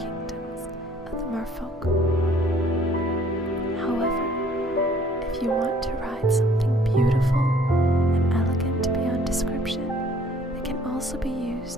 of the merfolk. However, if you want to ride something beautiful and elegant beyond description, they can also be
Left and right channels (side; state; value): both; normal; correlation 0.58